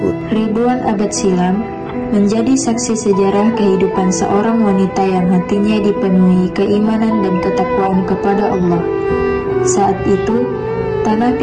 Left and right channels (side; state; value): both; identical; correlation 1.00